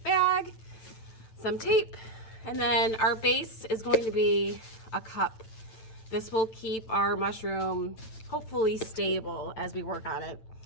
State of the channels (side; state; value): right; late; 9.0 ms